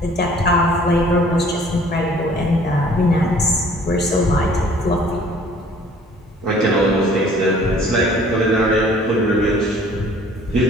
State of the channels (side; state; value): both; normal; correlation 0.54